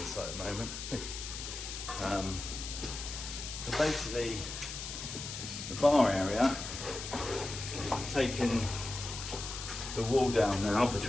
site at the moment. So basically, the bar area, I've taken the wall down now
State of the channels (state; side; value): noise; left; hiss, 7 dB below the sound